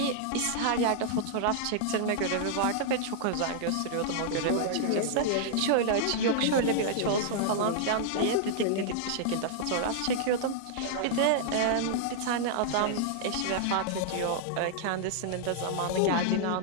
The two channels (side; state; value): both; different; correlation -0.01